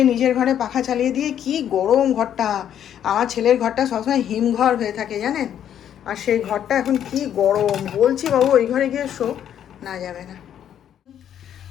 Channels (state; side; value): quieter; right; 9.9 dB